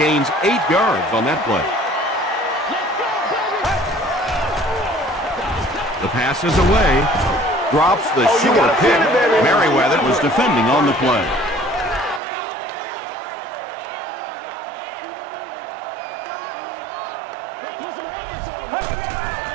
8 yards on that play. The pass is away. Drops the short pick. Merriweather was defending on the play. Let's put some helmets on them.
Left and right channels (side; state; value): left; drops out; at 12.2 s